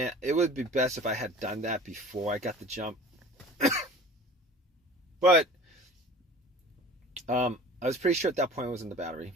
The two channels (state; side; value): normal; both; correlation 0.43